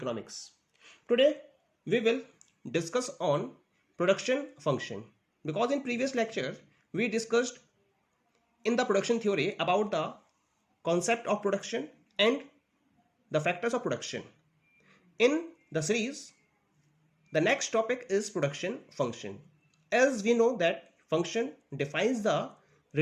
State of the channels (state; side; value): identical; both; correlation 1.00